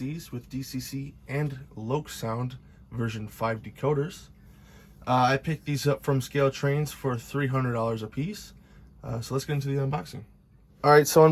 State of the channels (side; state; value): both; identical; correlation 1.00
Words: with DCC and Loksound version 5 decoders. I picked these up from ScaleTrains for $300 a piece. So let's get into the unboxing. Alright, so